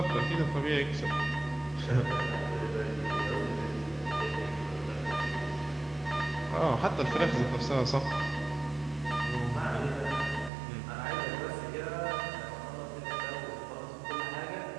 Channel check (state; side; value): drops out; left; at 10.5 s